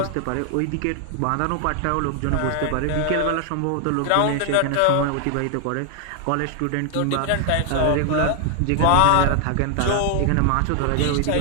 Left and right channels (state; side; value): different; both; correlation 0.00